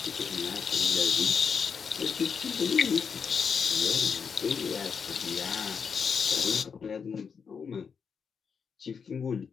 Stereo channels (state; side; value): quieter; right; 6.2 dB